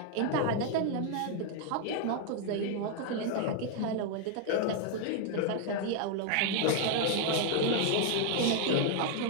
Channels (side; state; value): both; different; correlation 0.00